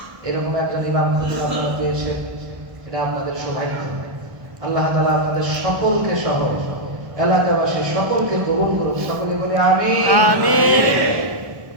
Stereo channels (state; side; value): late; left; 1.1 ms